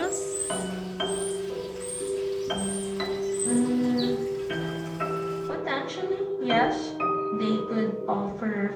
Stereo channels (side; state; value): both; identical; correlation 1.00